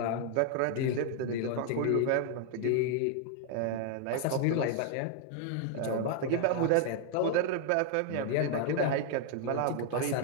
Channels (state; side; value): different; both; correlation 0.00